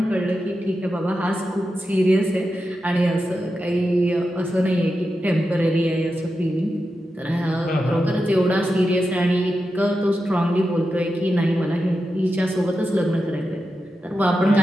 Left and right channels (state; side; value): normal; both; correlation 0.89